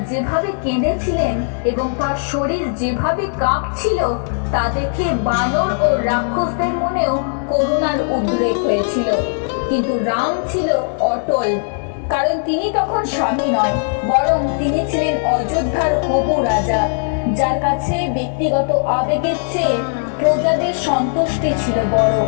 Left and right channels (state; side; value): silent; right; 67 dB below the other